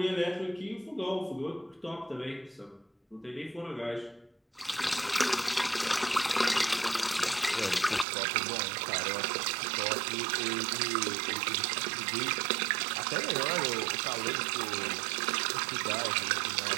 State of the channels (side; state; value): left; drops out; at 8.1 s